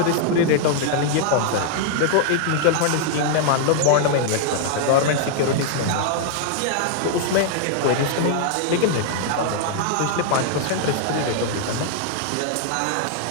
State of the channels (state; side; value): different; both; correlation 0.00